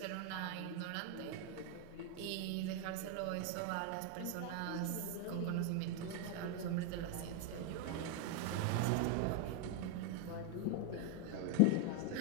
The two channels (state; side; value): different; both; correlation 0.01